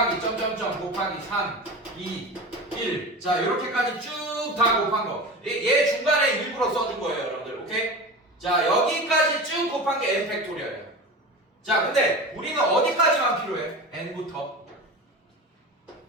점점점 곱하기 3, 2, 1 자, 요렇게까지 쭉 다 곱한 거. 얘 중간에 일부러 써준 거예요, 여러분들. 오케이? 자, 여기까지 쭉 곱한 게 n 팩토리얼이에요. 자, 근데 우리는 어디까지만 필요해? n부터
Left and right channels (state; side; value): normal; both; correlation 0.30